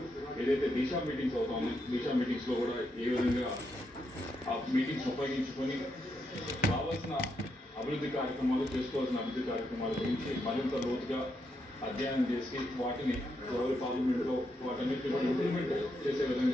ఏదైతే దిశా మీటింగ్స్ అవుతా ఉన్నాయి, దిశా మీటింగ్స్లో కూడా ఏ విధంగా ఆ మీటింగ్స్ ఉపయోగించుకొని కావాల్సిన అభివృద్ధి కార్యక్రమాలు, చేసుకోవాల్సిన అభివృద్ధి కార్యక్రమాల గురించి మరింత లోతుగా అధ్యయనం చేసి వాటిని ఎవరి పార్లమెంట్లో వాటన్నిటిని కూడా ఇంప్లిమెంట్ చేసే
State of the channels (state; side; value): normal; both; correlation 0.81